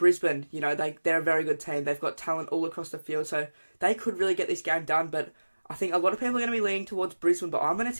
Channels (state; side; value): inverted; both; correlation -1.00